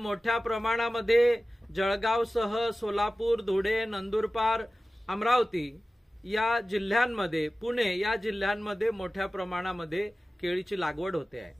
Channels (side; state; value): both; normal; correlation 0.96